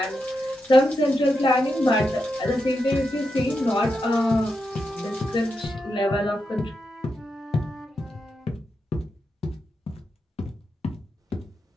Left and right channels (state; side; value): normal; both; correlation 0.86